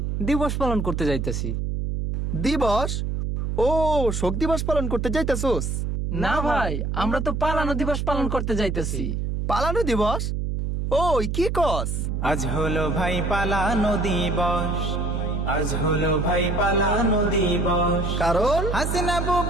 দিবস পালন করতে যাইতেছি। দিবস? ও, শোক দিবস পালন করতে যাইতেছোস? না ভাই, আমরা তো পালানো দিবস পালন করতে যাইতেছি। পালানো দিবস? ওই কি কস? আজ হলো ভাই পালানো দিবস, আজ হলো ভাই পালানো দিবস। কারণ হাসিনা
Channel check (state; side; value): noise; right; hum, 1 dB below the sound